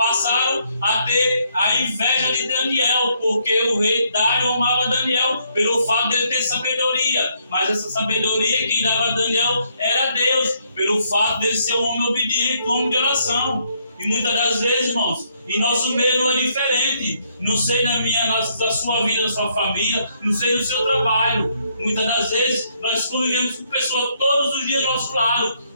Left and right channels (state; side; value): inverted; both; correlation -0.71